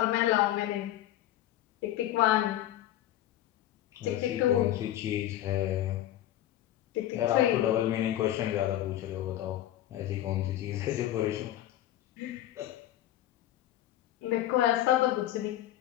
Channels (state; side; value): quieter; right; 13.2 dB